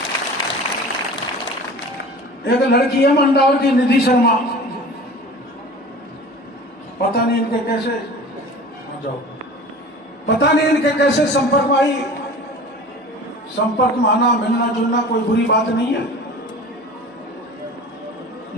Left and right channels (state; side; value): normal; both; correlation 0.39